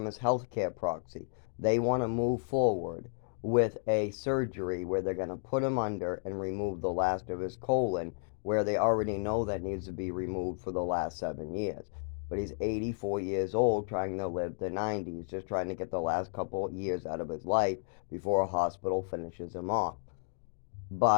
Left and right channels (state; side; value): silent; right; digital silence